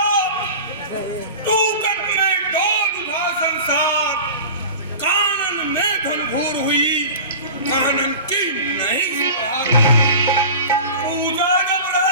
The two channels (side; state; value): both; inverted; correlation -0.35